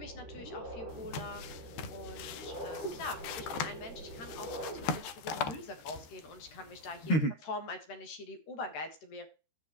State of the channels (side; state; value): right; late; 14 ms